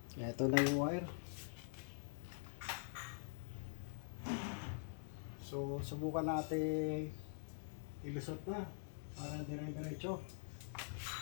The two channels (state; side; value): silent; right; digital silence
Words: Ito na yung wire. So, subukan natin ilusot na para dire-diretso.